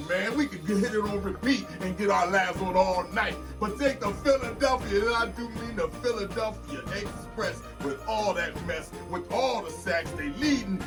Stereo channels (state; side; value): identical; both; correlation 1.00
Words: man. We could hit it on repeat and get our laughs on all night. But take the Philadelphia, and I do mean the Philadelphia Express, with all that mess, with all the sacks they leading.